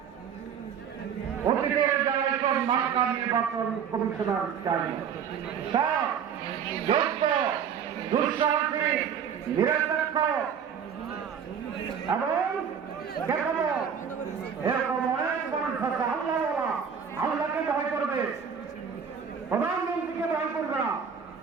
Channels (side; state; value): left; quieter; 7.4 dB